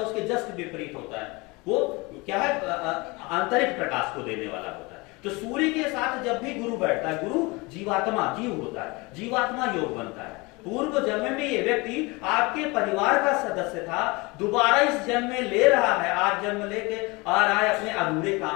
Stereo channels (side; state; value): right; quieter; 25.4 dB